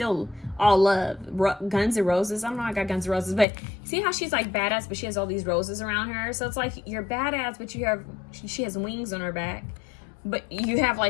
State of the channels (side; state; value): right; drops out; at 3.5 s